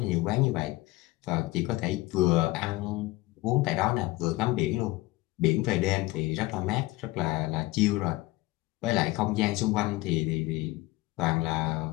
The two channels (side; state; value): right; quieter; 19.8 dB